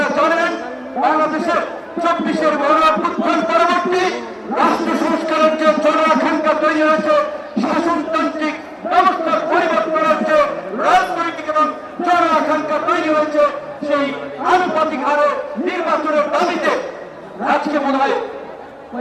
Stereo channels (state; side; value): identical; both; correlation 1.00